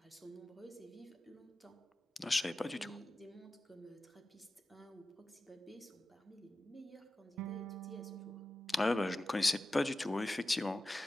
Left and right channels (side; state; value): both; normal; correlation 0.94